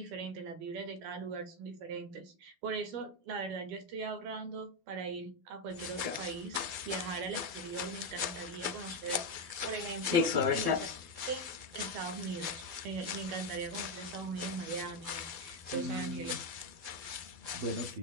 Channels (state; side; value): late; left; 12 ms